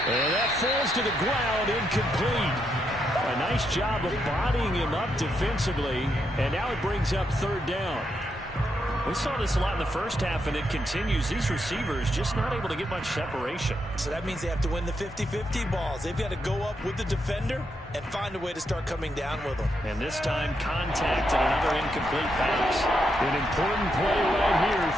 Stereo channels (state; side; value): normal; both; correlation 0.80